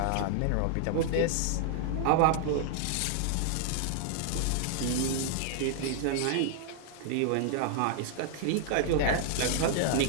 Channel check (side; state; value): both; different; correlation 0.00